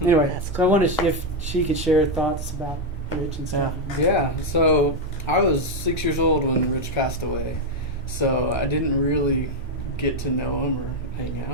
anyway, so I wondered if she could share thoughts about Rich and stuff. Yeah. So I was 6 years old when Rich passed away. So I didn't really get to know him or hang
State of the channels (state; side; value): normal; both; correlation 0.03